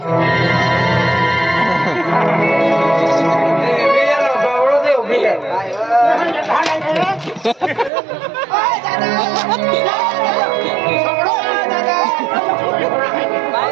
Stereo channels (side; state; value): left; drops out; at 7.9 s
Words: मेरा बावळो दे उभी है ओय